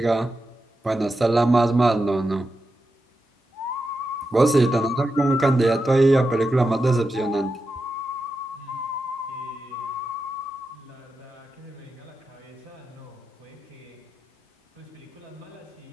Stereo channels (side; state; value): both; normal; correlation 0.89